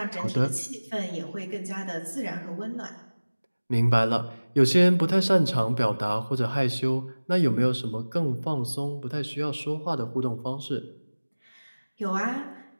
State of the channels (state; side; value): inverted; both; correlation -1.00